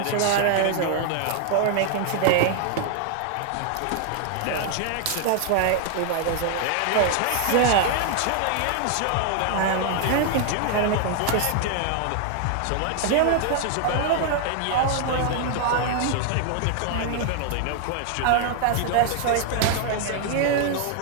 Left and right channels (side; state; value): both; different; correlation 0.00